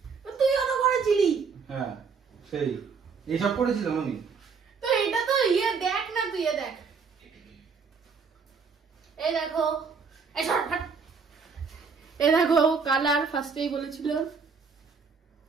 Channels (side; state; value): left; quieter; 5.4 dB